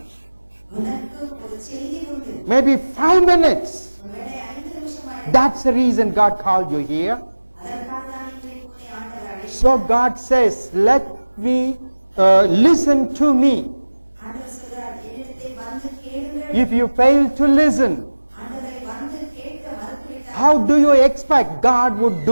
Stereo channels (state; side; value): inverted; both; correlation -1.00